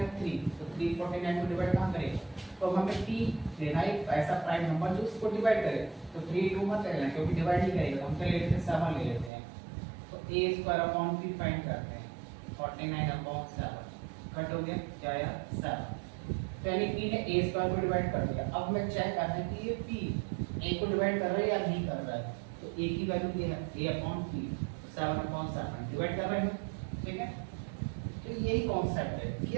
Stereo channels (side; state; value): left; drops out; at 9.3 s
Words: 3, तो 3 49 को डिवाइड कहां करेगा, तो हमें p लेना है ऐसा प्राइम नंबर जो इसको डिवाइड करे, तो 3 2 मत लेना क्योंकि डिवाइड नहीं करेगा, हम क्या ले लेते हैं 7 ले लेते हैं, तो a² फाइंड करते हैं 49/7 कट हो गया, क्या आया 7, तो यानी p ने a स्क्वायर को डिवाइड कर दिया। अब मैं चेक करना है कि ये p a को डिवाइड कर रहा है या नहीं कर रहा है, तो a की वैल्यू क्या है a/p 7/7 डिवाइड कर रहे हैं, ठीक है। तो यही कॉन्सेप्ट है कि